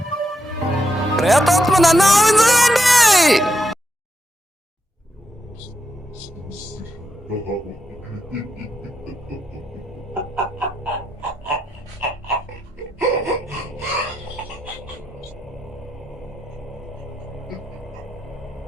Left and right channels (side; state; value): both; normal; correlation 0.82